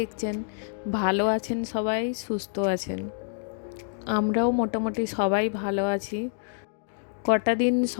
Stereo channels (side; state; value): right; silent; digital silence